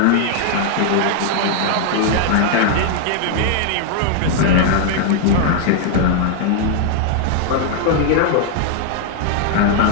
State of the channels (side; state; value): both; different; correlation 0.00